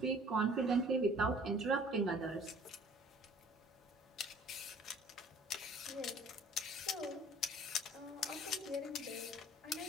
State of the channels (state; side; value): normal; both; correlation 0.52